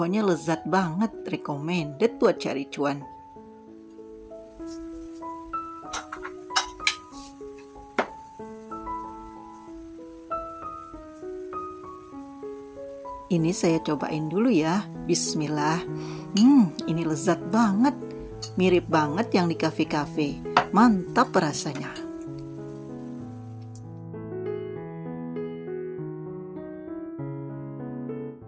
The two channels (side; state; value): both; identical; correlation 1.00